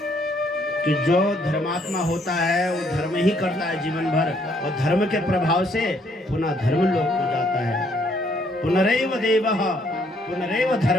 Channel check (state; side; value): normal; both; correlation 0.68